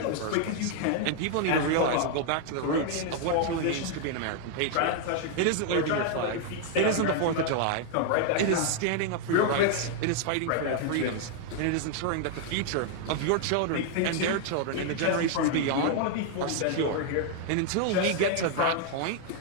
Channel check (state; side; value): different; both; correlation 0.00